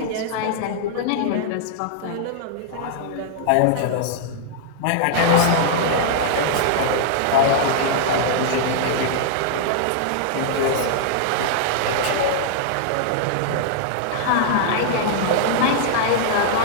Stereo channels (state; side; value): different; both; correlation -0.01